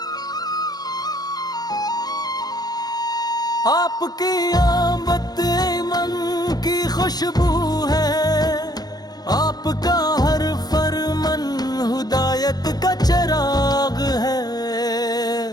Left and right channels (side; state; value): right; late; 0.19 ms